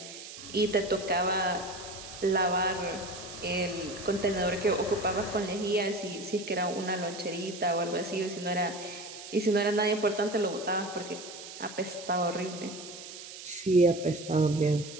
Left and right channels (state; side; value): noise; right; hiss, 13 dB below the sound